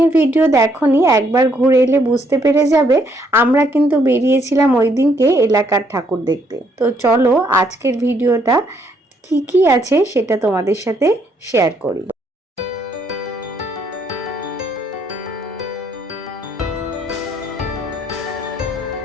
ভিডিও দেখোনি, একবার ঘুরে এলে বুঝতে পেরে যাবে আমরা কিন্তু বেরিয়েছিলাম ওই দিনকে এলাকার ঠাকুর দেখতে। তো চলো আজকের ভিডিওটা কি কি আছে সেটা তোমাদের সাথে শেয়ার করি।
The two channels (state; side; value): normal; both; correlation 0.70